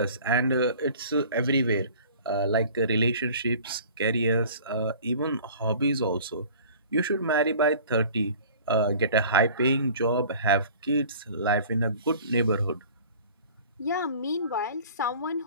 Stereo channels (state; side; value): inverted; both; correlation -0.46